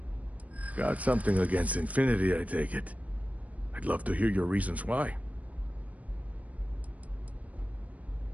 Got something against Infinity, I take it. I'd love to hear your reasons why.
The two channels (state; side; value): late; left; 0.069 ms